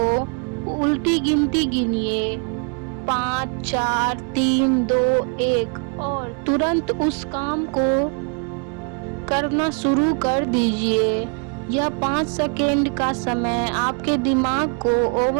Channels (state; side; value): quieter; left; 37.3 dB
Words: उल्टी गिनती गिनिए, 5, 4, 3, 2, 1 और तुरंत उस काम को करना शुरू कर दीजिए। यह 5 सेकेंड का समय आपके दिमाग को